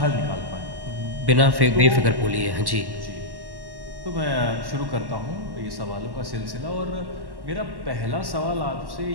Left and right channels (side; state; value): left; late; 1.1 ms